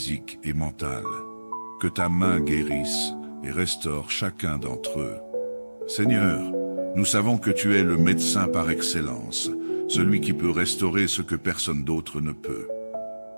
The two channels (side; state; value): both; inverted; correlation -1.00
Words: et mentales. Que ta main guérisse et restaure chacun d'entre eux. Seigneur, nous savons que tu es le médecin par excellence, celui qui peut restaurer ce que personne d'autre ne peut.